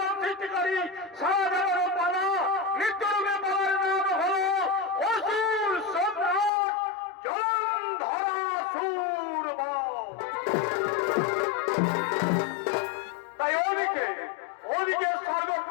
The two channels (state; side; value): drops out; right; at 6.5 s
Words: সৃষ্টিকারী সারা দেওয়ার পালা নৃত্যরূপে পালার নাম হলো অসুর সম্রাট জলন্ধরা সূরমা। তাই ওদিকে